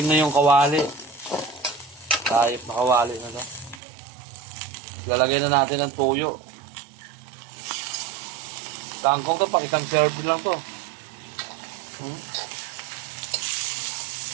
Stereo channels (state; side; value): drops out; left; at 3.8 s